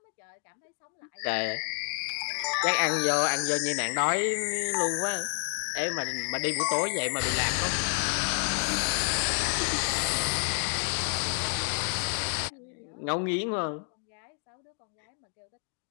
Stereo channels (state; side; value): silent; right; digital silence